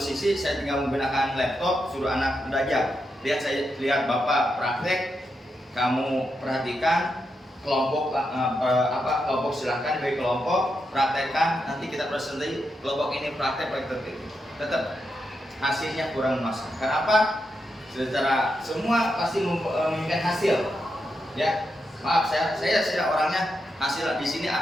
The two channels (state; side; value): normal; both; correlation 0.85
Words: saya tinggal menggunakan laptop, suruh anak belajar. Lihat bapak praktek, kamu perhatikan kelompok kelompok silahkan bagi kelompok praktekkan, nanti kita presentasi kelompok ini praktek. Tetap hasilnya kurang masuk. Kenapa? Secara semua pasti menginginkan hasil. Ya, maaf saya orangnya hasil di sini